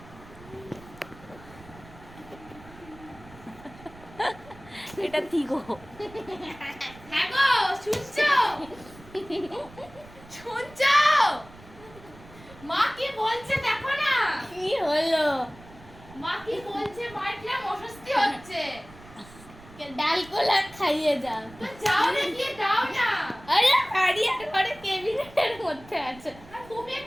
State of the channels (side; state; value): right; noise; rumble, 20 dB below the sound